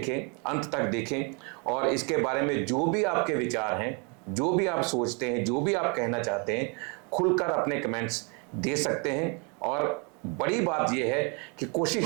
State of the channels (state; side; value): quieter; left; 33.8 dB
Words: अंत तक देखें, और इसके बारे में जो भी आपके विचार हैं, जो भी आप सोचते हैं, जो भी आप कहना चाहते हैं, खुलकर अपने कमेंट्स दे सकते हैं। और बड़ी बात यह है कि